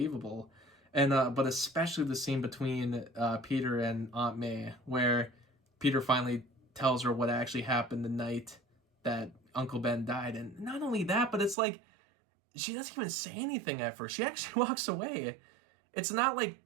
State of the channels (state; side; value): drops out; left; at 11.6 s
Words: And but especially the scene between Peter and Aunt May, where Peter finally tells her what actually happened the night that Uncle Ben died. And not only that, but it's like, she doesn't even say anything at first. She actually walks away. It's not